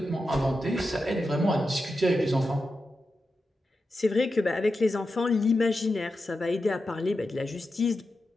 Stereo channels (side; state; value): both; normal; correlation 0.90